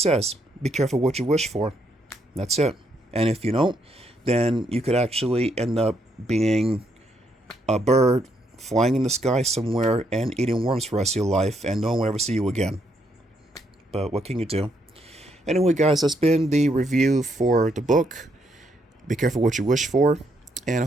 be careful what you wish for. That's it. And if you don't, then you could actually end up being a bird flying in the sky somewhere and eating worms for the rest of your life, and no one will ever see you again. But what can you do? Anyway, guys, that's been the review for the book. Be careful what you wish for, and I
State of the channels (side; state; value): both; normal; correlation 0.75